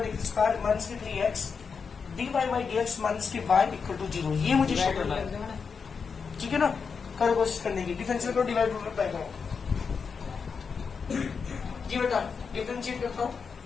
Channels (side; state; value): right; quieter; 5.7 dB